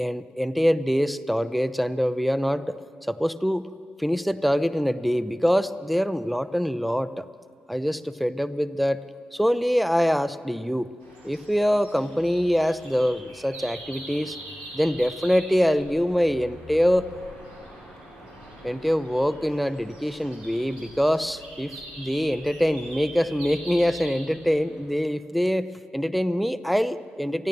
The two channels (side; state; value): both; normal; correlation 0.98